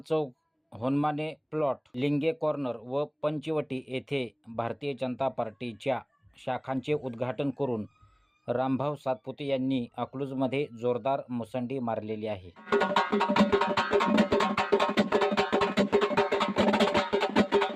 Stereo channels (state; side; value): identical; both; correlation 1.00